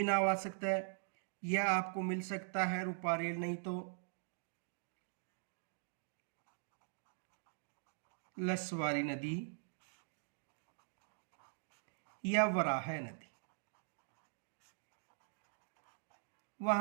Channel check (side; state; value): left; silent; digital silence